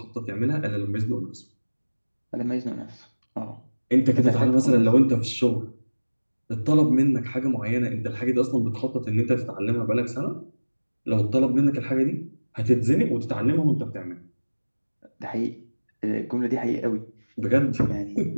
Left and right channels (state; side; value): inverted; both; correlation -1.00